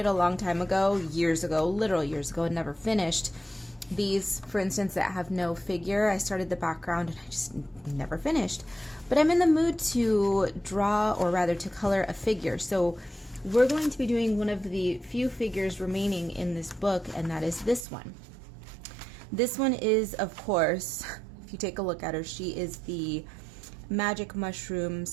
a long time ago, years ago, literal years ago, and never finished. These, for instance, that have no figure, I started the background and I just never finished. But I'm in the mood to draw, or rather to color a figure. So we're going to be doing one of the few figures remaining in this book, and that is this one. This one is, of course, if you take a look at her, she is the magic mushroom,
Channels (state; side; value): drops out; left; at 17.9 s